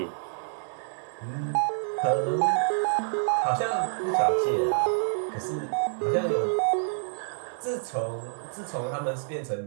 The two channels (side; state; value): left; silent; 59 dB below the other